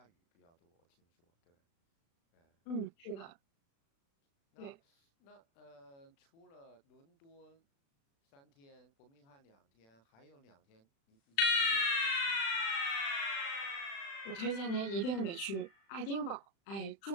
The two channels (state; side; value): late; right; 36 ms